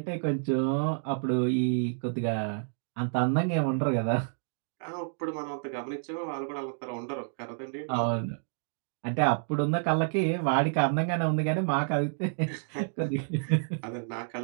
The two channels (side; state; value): left; silent; digital silence